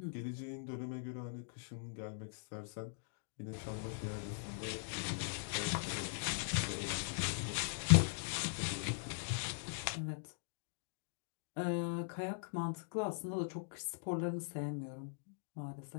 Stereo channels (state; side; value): silent; right; digital silence